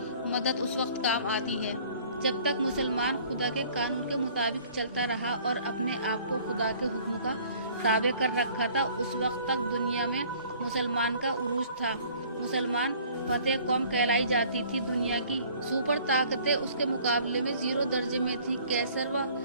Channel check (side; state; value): both; inverted; correlation -0.54